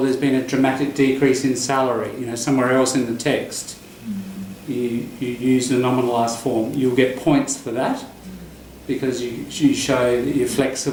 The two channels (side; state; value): both; identical; correlation 1.00